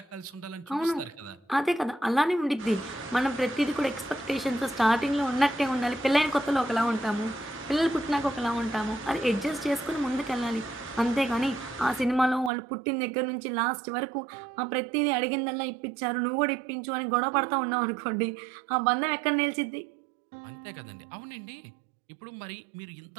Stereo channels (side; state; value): left; drops out; at 12.5 s